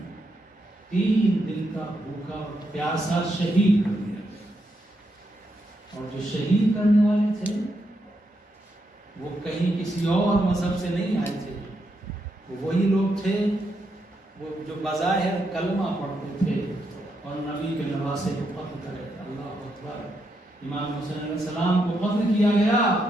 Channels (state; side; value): normal; both; correlation 0.81